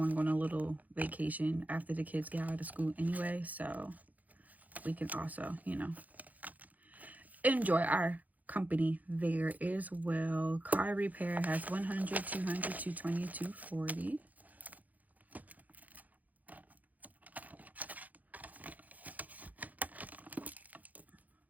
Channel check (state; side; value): late; left; 0.079 ms